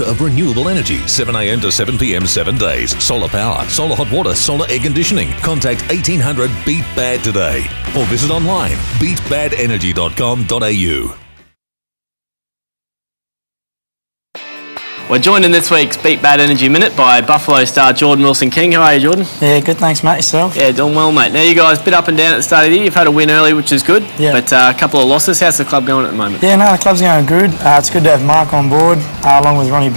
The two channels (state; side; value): inverted; both; correlation -1.00